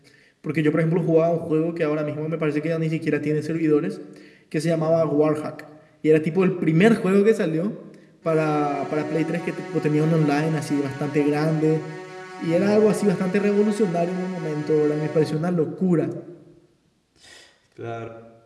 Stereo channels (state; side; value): identical; both; correlation 1.00